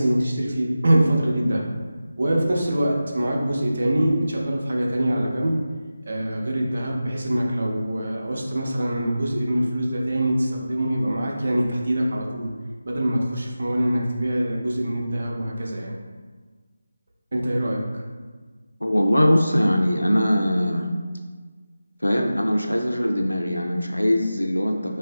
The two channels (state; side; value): inverted; both; correlation -0.95